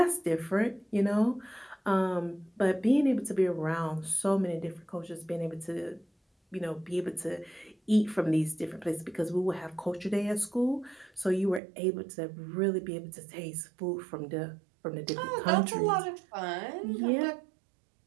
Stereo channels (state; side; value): drops out; left; at 11.6 s